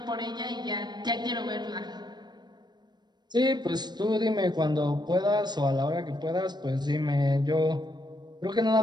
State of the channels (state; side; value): late; left; 0.21 ms